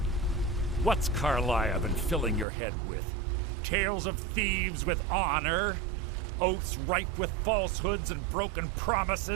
What's Carlia been filling your head with? Tales of thieves with honor? Oaths ripe with falsehoods and broken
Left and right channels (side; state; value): left; drops out; at 2.5 s